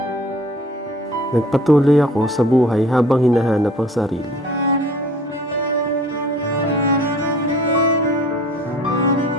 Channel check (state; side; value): normal; both; correlation 0.49